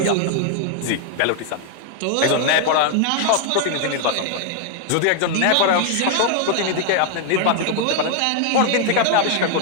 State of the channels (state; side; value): different; both; correlation 0.00